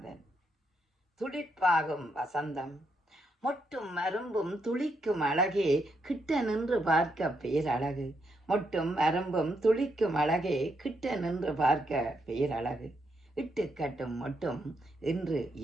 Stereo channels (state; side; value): normal; both; correlation 0.79